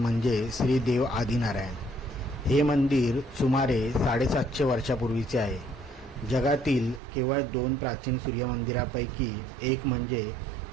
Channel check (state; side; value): drops out; left; at 7.0 s